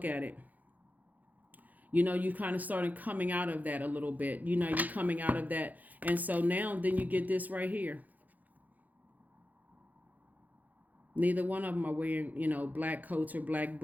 at it. You kind of started coming out of that a little bit. You're coming out of that. And so now then you get this right here. Neither one of them are wearing, black coats or black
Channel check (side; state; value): left; late; 0.081 ms